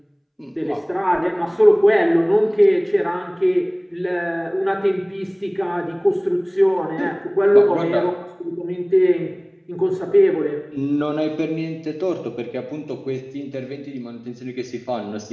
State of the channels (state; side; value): identical; both; correlation 1.00